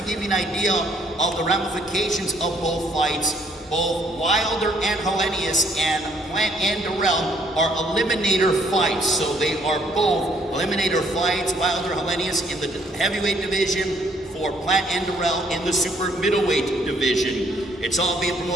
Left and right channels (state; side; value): normal; both; correlation 0.65